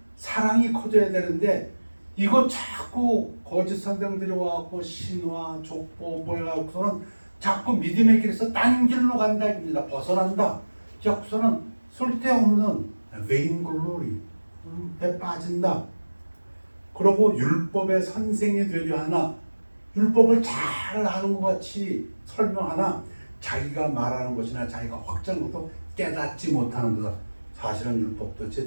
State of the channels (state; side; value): inverted; both; correlation -1.00